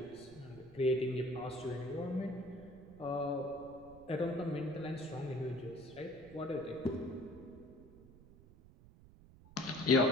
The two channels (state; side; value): noise; right; rumble, 21 dB below the sound